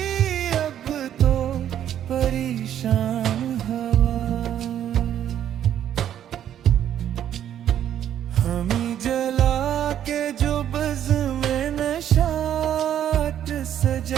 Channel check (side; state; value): left; quieter; 10.4 dB